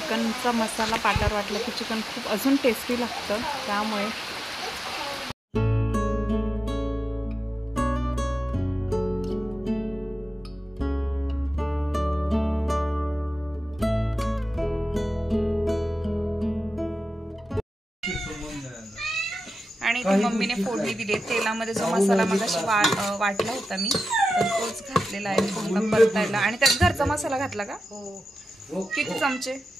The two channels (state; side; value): normal; both; correlation 0.92